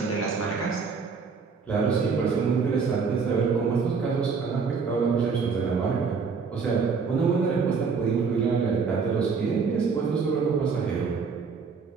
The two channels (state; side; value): quieter; left; 5.3 dB